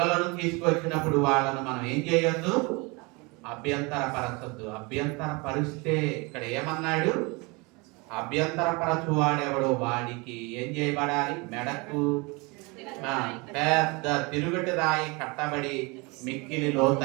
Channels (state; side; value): quieter; left; 27.6 dB